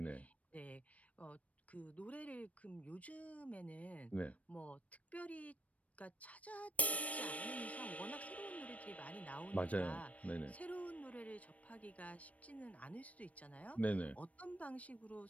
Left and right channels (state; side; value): late; right; 0.066 ms